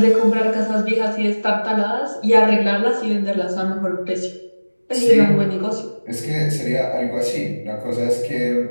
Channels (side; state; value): both; inverted; correlation -1.00